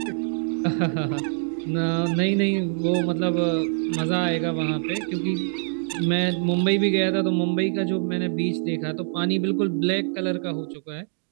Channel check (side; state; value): left; silent; digital silence